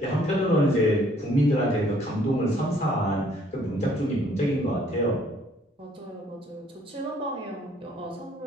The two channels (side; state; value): both; normal; correlation 0.62